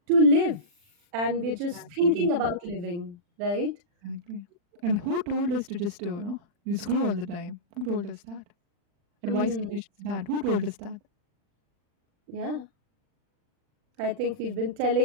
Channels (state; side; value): late; left; 40 ms